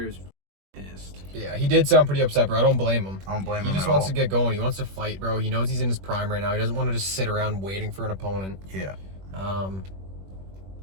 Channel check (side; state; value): left; late; 21 ms